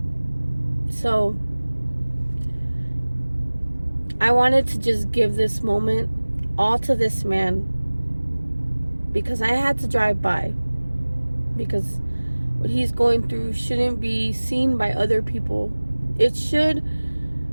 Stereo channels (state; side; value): inverted; both; correlation -1.00